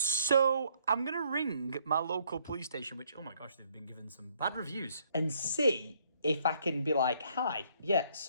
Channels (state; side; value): inverted; both; correlation -0.67